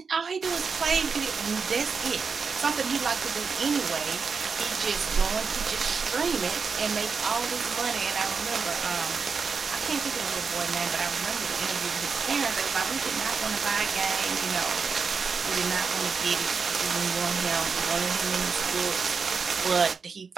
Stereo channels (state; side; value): quieter; left; 5.3 dB